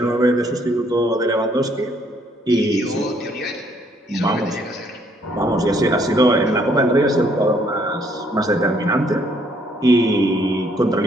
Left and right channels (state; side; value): normal; both; correlation 0.67